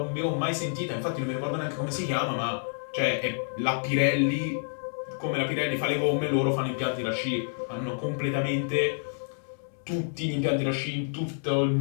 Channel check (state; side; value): silent; right; digital silence